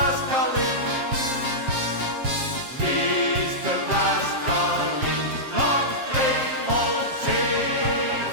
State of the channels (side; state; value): left; late; 7.5 ms